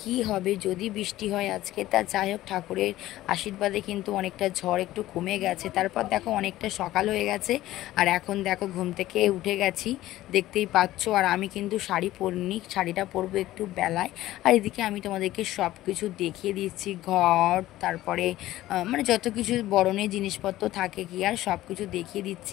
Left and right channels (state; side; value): quieter; right; 15.4 dB